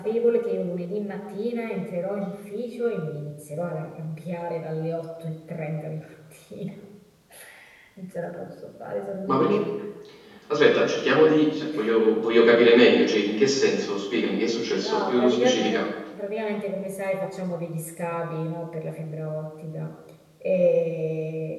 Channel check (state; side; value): identical; both; correlation 1.00